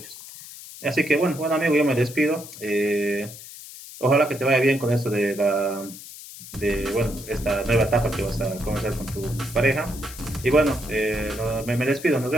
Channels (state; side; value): noise; left; hiss, 15 dB below the sound